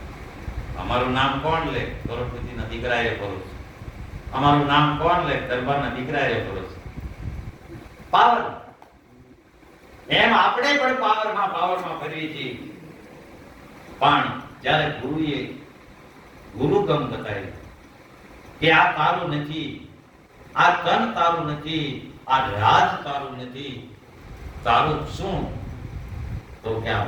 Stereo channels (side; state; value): both; identical; correlation 1.00